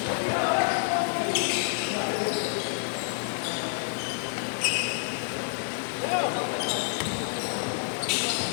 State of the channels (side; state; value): right; silent; digital silence